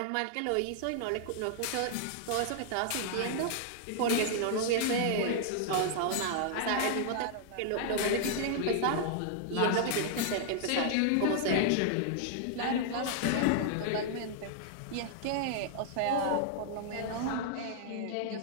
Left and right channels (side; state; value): both; different; correlation -0.01